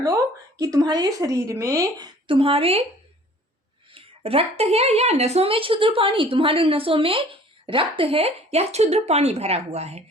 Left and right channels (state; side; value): normal; both; correlation 0.51